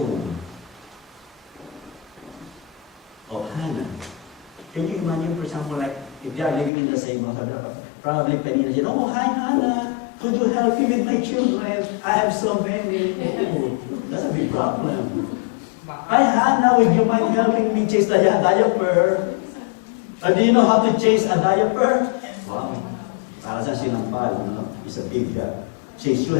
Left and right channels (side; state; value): right; drops out; at 6.7 s